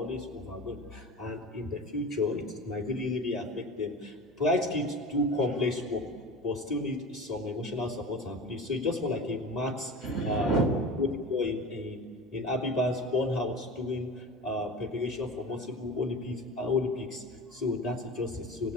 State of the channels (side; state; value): both; normal; correlation 0.33